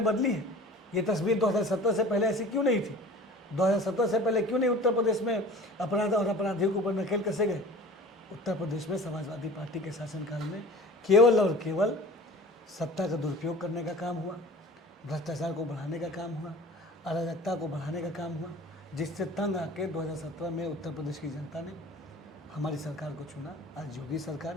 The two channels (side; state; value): both; normal; correlation 0.43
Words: बदली है। ये तस्वीर 2017 से पहले ऐसी क्यों नहीं थी? 2017 से पहले क्यों नहीं उत्तर प्रदेश में अपराध और अपराधियों के ऊपर नकेल कसे गए? उत्तर प्रदेश में समाजवादी पार्टी के शासनकाल में केवल और केवल सत्ता का दुरुपयोग करने का काम हुआ, भ्रष्टाचार को बढ़ाने का काम हुआ, अराजकता को बढ़ाने का काम हुआ, जिससे तंग आके 2017 में उत्तर प्रदेश की जनता ने हमारी सरकार को चुना। आज योगी सरकार